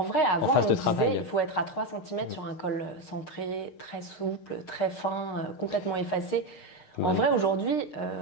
vrai, avant, on disait il faut être à 3 cm sur un col centré, très souple, très fin, complètement effacé. En vrai, aujourd'hui,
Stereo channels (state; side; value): late; right; 6.5 ms